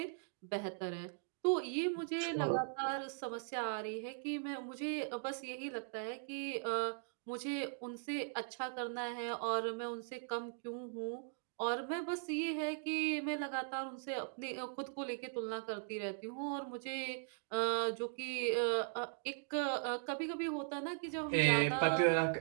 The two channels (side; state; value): left; silent; digital silence